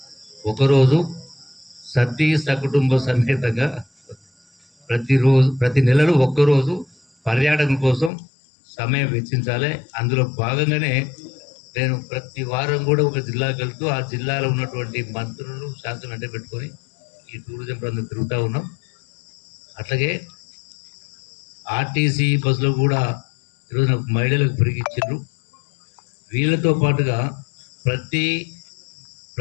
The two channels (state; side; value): drops out; right; at 8.1 s